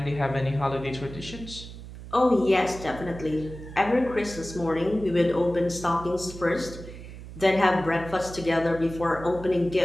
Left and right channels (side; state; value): right; noise; hum, 13 dB below the sound